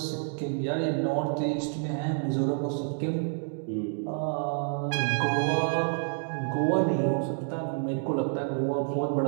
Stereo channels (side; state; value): left; silent; 59 dB below the other